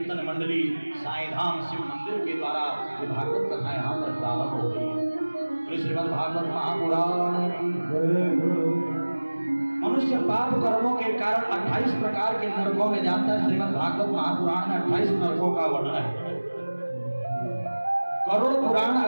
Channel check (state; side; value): inverted; both; correlation -1.00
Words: मंडली साईं धाम शिव मंदिर के द्वारा ये भागवत कथा यहाँ पर प्रारंभ हो गई है। तो श्रीमद् भागवत महापुराण मनुष्य पाप कर्मों के कारण 28 प्रकार के नरकों में जाता है। श्रीमद् भागवत महापुराण में 28 नरकों का वर्णन है। करोड़ पुराण